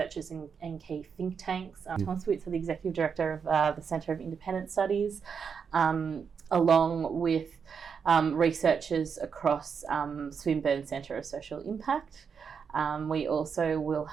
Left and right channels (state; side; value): quieter; left; 6.4 dB